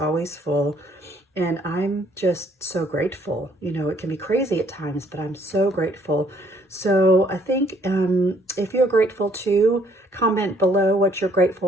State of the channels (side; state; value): both; normal; correlation 0.64